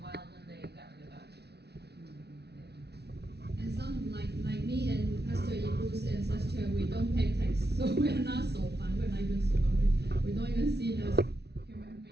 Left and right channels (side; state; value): left; late; 0.49 ms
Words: while, then they got rid of that. And some like me and Pastor Ibu's ancestor, we don't pay tax, so we are not so fun. We're not even so fun. We don't even see it as human